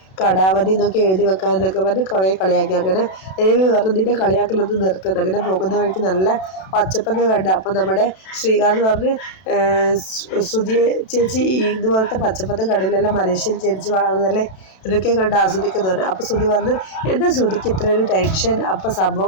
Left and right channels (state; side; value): late; right; 32 ms